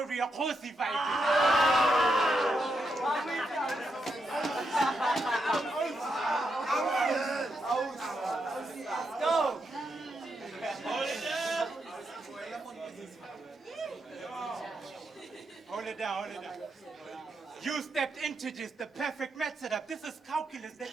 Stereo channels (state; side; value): normal; both; correlation 0.82